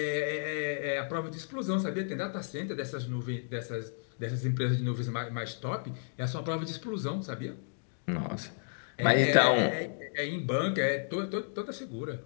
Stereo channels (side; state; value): right; silent; digital silence